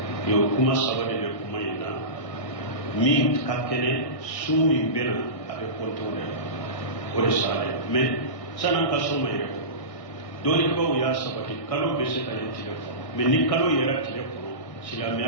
o kuma saba de bɛ kuma in na min ka kɛnɛ su min bɛ na a bɛ compter o de la o de salen mais san'an ka so ma yɛrɛ dɔɔnibaw y'a sabati kalo bɛ se ka ye tile kɔnɔ mais ni kalo yɛrɛ tile kɔnɔ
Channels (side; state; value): right; late; 1.6 ms